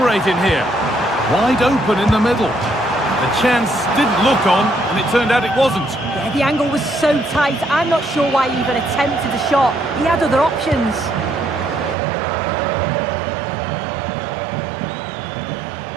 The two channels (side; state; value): left; drops out; at 12.0 s